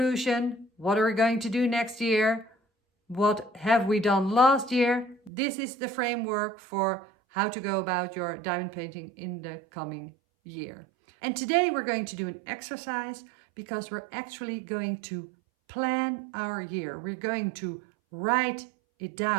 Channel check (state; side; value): drops out; left; at 5.3 s